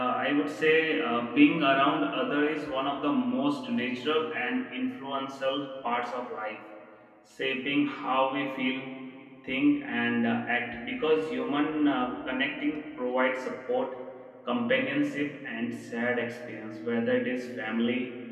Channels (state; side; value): identical; both; correlation 1.00